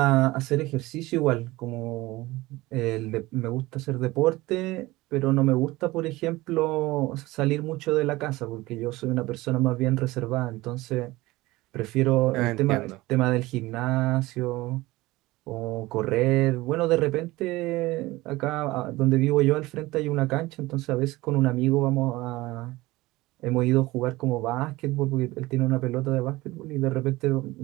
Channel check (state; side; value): quieter; left; 19.7 dB